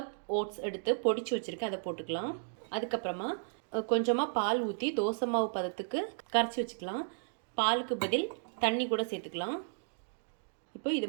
ஓட்ஸ் எடுத்து பொடிச்சு வச்சுருக்கேன், அதை போட்டுக்கலாம். அதுக்கப்புறமா கொஞ்சமாக பால் ஊற்றி தோசை மாவு பதத்துக்கு கரைச்சி வச்சுக்கலாம். பாலுக்கு பதில் தண்ணி கூட சேர்த்துக்கலாம். இப்போ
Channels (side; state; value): left; silent; digital silence